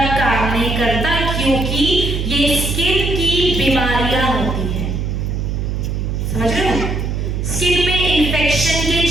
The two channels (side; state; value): right; noise; hum, 2 dB below the sound